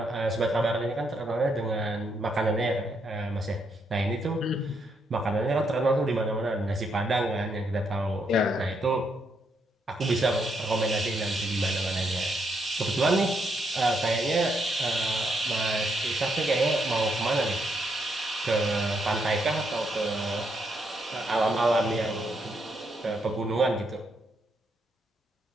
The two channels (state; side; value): normal; both; correlation 0.77